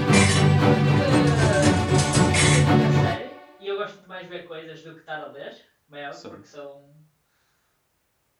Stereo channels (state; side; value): identical; both; correlation 1.00